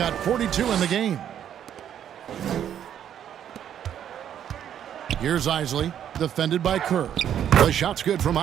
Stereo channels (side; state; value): left; quieter; 9.8 dB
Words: 42 in the game. Here's Isley, defended by Kerr. The shot's good from